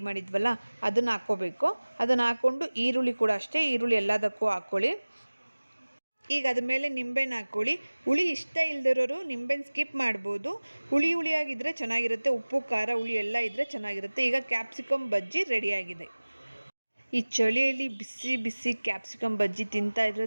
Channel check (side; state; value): both; inverted; correlation -1.00